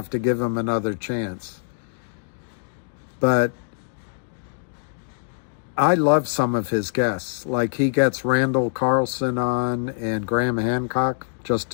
to give him another chance. But I love some of his guests. Like, he gets Randall Carlson on and Graham Hancock, just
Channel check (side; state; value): right; silent; digital silence